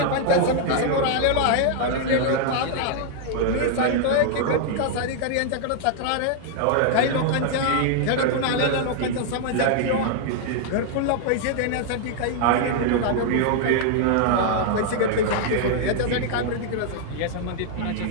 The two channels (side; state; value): both; different; correlation 0.00